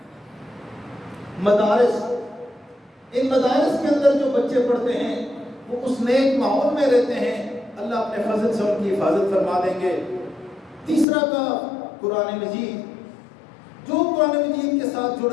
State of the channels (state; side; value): drops out; right; at 11.1 s